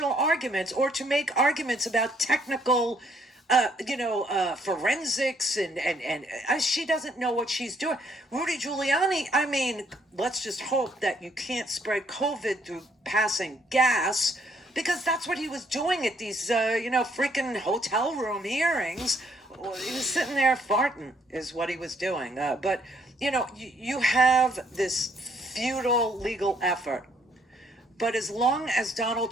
arguments or to make arguments about technical, forensics and she doesn't know what she's doing. Rudy Giuliani, I mean, let's just hope that you can't spread COVID through passing gas, because that's what he was doing at these, freaking hotel room hearings. He was sitting there farting is what he was doing. But, you have this futile legal effort. But as long as Donald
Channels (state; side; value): normal; both; correlation 0.68